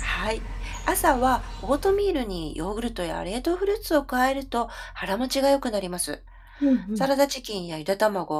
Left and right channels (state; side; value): identical; both; correlation 1.00